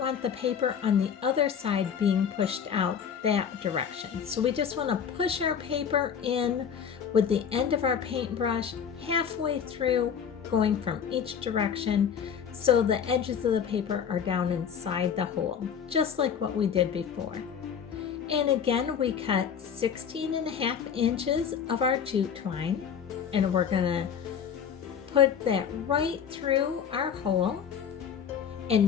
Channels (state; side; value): quieter; right; 7.7 dB